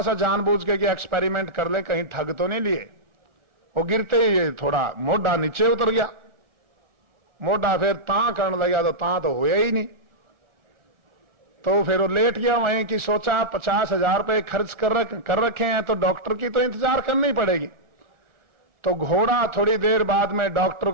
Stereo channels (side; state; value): left; late; 1.4 ms